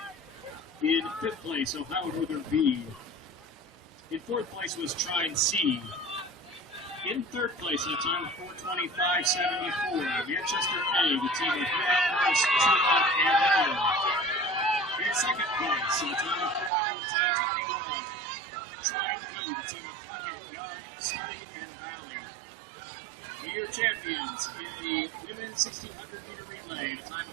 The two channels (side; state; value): left; drops out; at 16.7 s